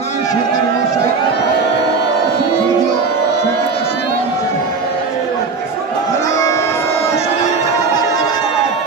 সরকার মহাশয়, স্বর্গীয়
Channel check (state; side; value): quieter; left; 4.6 dB